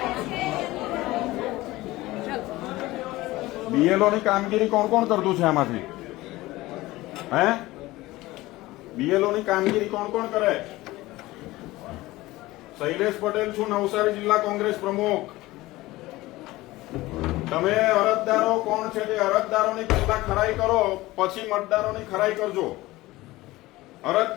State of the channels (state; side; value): quieter; right; 18.7 dB